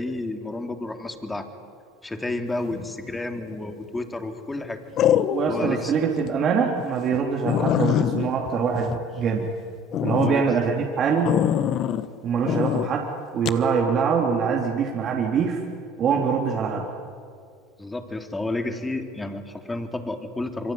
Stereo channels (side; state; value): both; normal; correlation 0.54